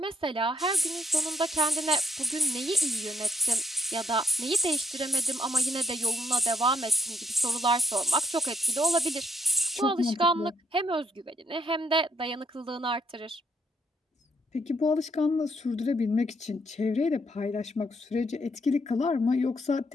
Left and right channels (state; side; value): normal; both; correlation 0.71